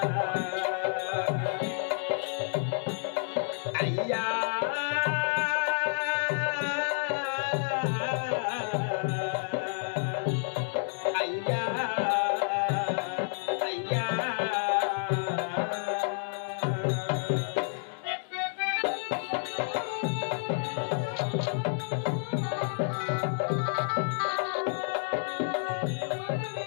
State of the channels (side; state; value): right; silent; digital silence